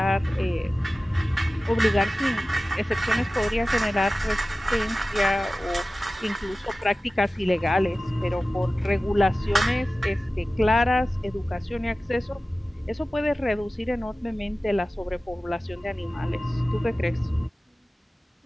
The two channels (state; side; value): normal; both; correlation 0.96